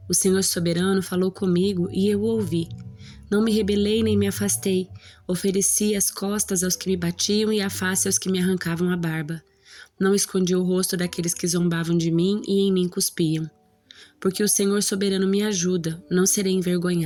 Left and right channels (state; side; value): identical; both; correlation 1.00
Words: O Senhor soberano falou comigo e eu o ouvi. Não me rebelei nem me afastei. Ofereci as costas aos que me batiam e a face aos que me arrancavam a barba. Não escondi o rosto daqueles que zombavam de mim e em mim cuspiam. Porque o Senhor soberano me ajuda, não serei